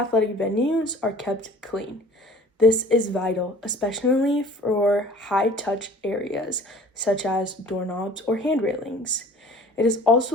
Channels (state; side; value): normal; both; correlation 0.47